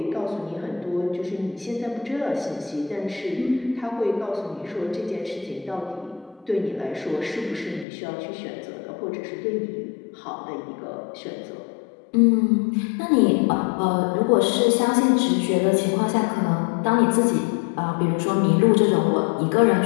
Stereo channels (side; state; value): right; drops out; at 7.9 s